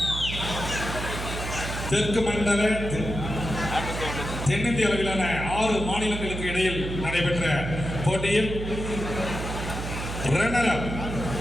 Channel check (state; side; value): noise; right; hum, 5 dB below the sound